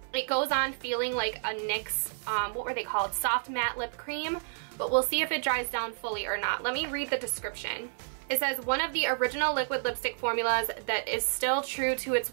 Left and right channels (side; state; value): left; silent; 58 dB below the other